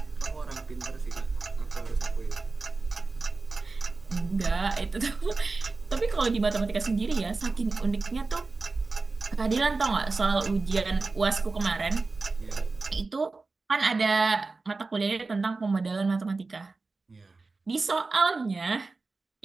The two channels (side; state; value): left; quieter; 3.8 dB